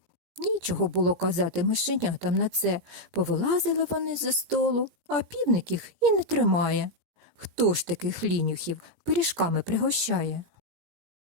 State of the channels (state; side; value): late; left; 17 ms